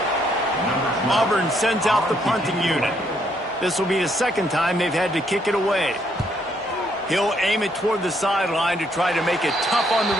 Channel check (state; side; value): normal; both; correlation 0.71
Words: Auburn sends out the punting unit. This will be the second time they've had to kick it away. He'll aim it toward the sideline to try to make it tough on the